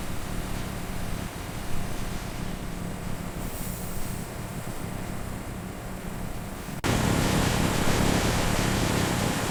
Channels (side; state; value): both; identical; correlation 1.00